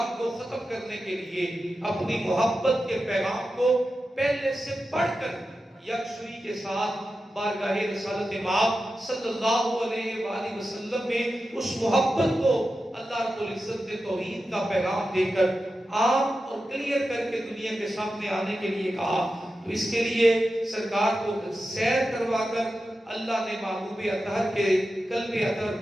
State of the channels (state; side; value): normal; both; correlation 0.92